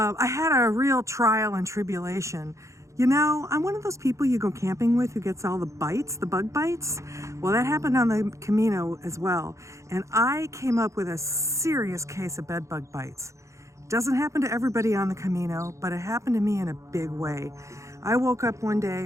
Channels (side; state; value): left; late; 0.15 ms